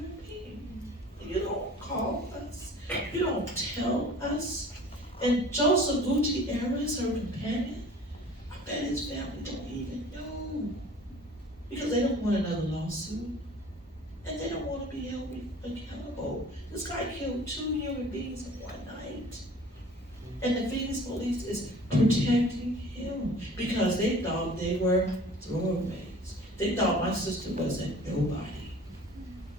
being. And you don't call us. You don't tell us. And Joseph Gutierrez, her companion, I bet his family don't even know. Because they don't want another lawsuit. And they don't want to be held accountable. This guy killed 2 human beings in one night. And the Phoenix police is protecting him because they thought they were throwaways. They thought my sister wasn't nobody.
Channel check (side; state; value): both; normal; correlation 0.46